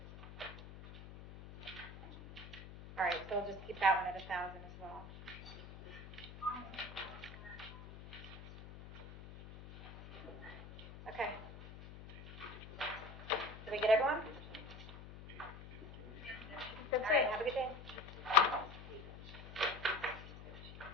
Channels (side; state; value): left; noise; hum, 14 dB below the sound